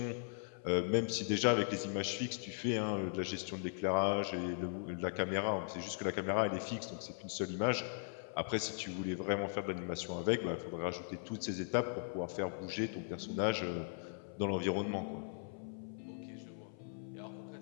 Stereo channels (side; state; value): right; silent; 52 dB below the other